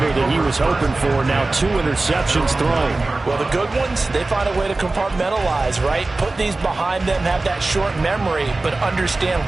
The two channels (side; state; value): left; quieter; 3.2 dB